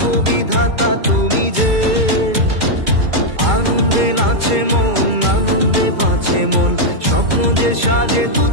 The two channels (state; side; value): late; left; 2.3 ms